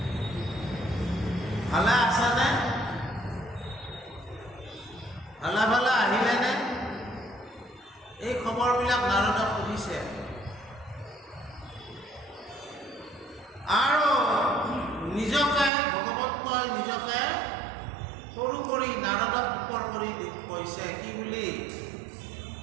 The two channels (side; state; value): left; drops out; at 15.7 s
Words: ভালে আছেনে, ভালে ভালে আহিলেনে? এই খবৰবিলাক নাৰদক সুধিছে। আৰু নিজকে ভগৱন্তই নিজকে সৰু কৰি নাৰদক ওপৰ কৰি কৈছে কি বুলি,